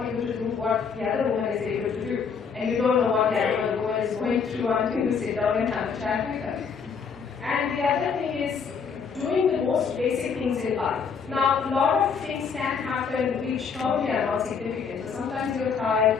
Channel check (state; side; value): quieter; right; 6.0 dB